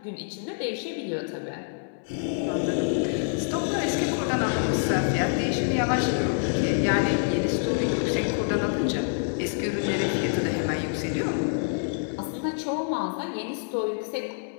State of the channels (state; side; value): silent; right; 60 dB below the other